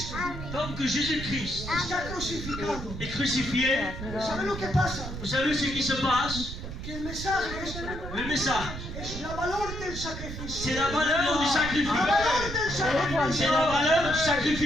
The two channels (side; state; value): right; noise; rumble, 8 dB below the sound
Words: Tant que Jésus-Christ está crucificado, est crucifié, ¿sabe lo que pasa? vous savez ce qui se passe? Que el mensaje Le message, es la valor del sacrificio. c'est la valeur du La sacrifice. valor del sacrificio. C'est la valeur du